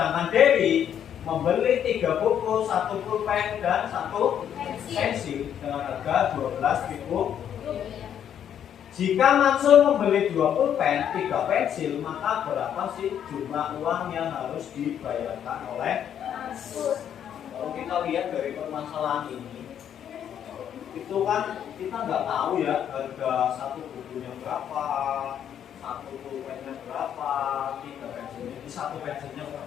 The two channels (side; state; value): right; quieter; 9.4 dB